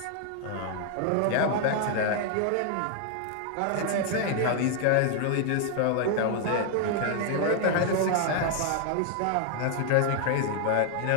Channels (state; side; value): different; both; correlation 0.00